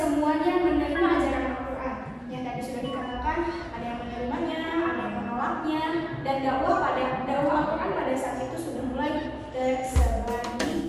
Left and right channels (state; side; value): identical; both; correlation 1.00